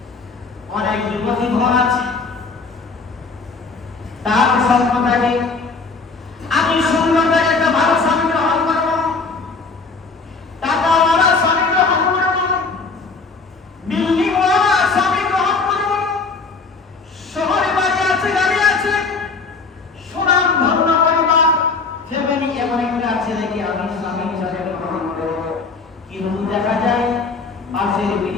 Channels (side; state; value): right; quieter; 4.3 dB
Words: অনেক যুবতী ঘর আছে, তার স্বপ্ন থাকে আমি সুন্দর একটা ভালো স্বামী গ্রহণ করবো, টাকাওয়ালা স্বামী গ্রহণ করবো, বিল্ডিংওয়ালা স্বামী গ্রহণ করবো, শহরে বাড়ি আছে, গাড়ি আছে, সুনাম ধন্য পরিবার, ফ্যামিলি, এমন একটা ছেলেকে আমি স্বামী হিসাবে গ্রহণ করবো। কিন্তু দেখা যায় পাশের